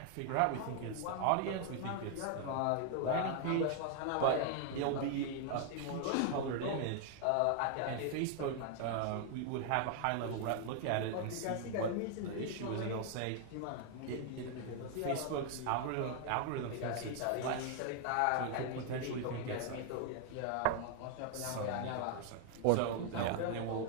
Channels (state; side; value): different; both; correlation 0.00